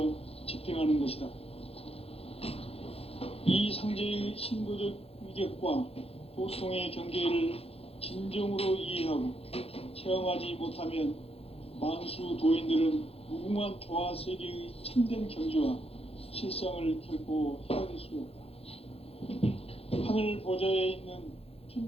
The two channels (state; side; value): late; right; 0.29 ms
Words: 집행하는 것이다. 이 상제의 신도적 위격과 도통의 경계를 진정으로 이해하고 체험하지 못하면 만수 도인들은 무궁한 조화 세계의 참된 경지와 실상을 결코 헤아릴 수 없다. 하늘 보좌에 있는